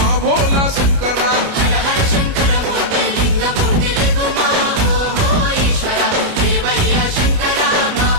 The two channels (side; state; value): left; late; 29 ms